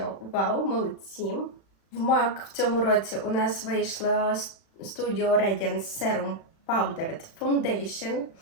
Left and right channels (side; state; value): right; late; 36 ms